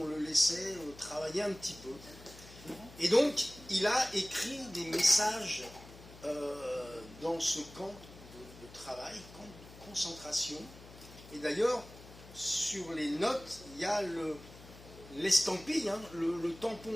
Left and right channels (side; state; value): left; noise; hum, 18 dB below the sound